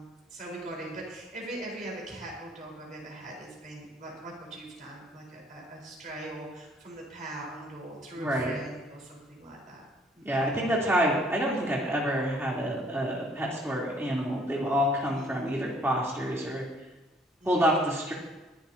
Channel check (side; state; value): both; normal; correlation 0.60